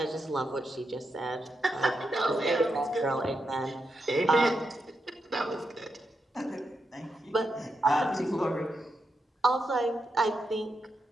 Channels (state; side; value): normal; both; correlation 0.85